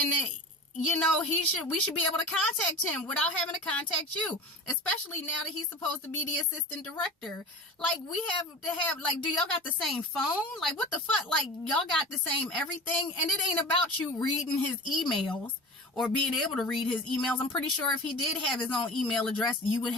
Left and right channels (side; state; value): both; normal; correlation 0.34